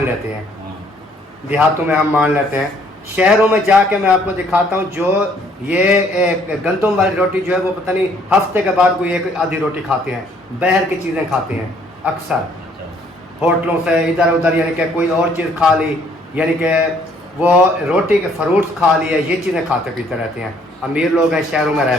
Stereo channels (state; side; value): normal; both; correlation 0.63